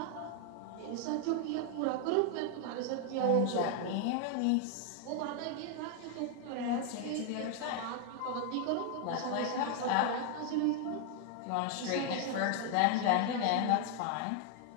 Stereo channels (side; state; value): both; different; correlation 0.00